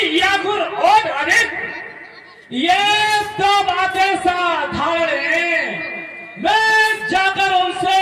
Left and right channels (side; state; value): both; identical; correlation 1.00